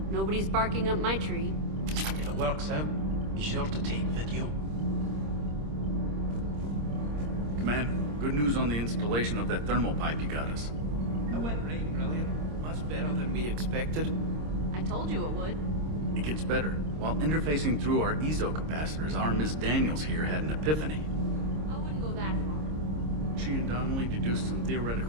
Nobody's barking up my tree. If it works out, be sure to take video. Commander, good news on the installation of that thermal pipe you got us. It went right brilliant. Much better than we expected. I told you it would. It gets better. While interfacing through our EZO capacitors, our Miss Daniels here had an epiphany. I wouldn't go that far. She and Donnelly deduced some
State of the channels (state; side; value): late; left; 26 ms